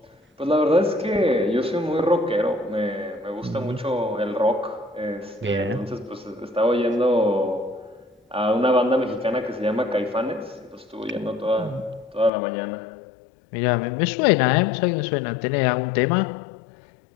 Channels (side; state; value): right; drops out; at 12.3 s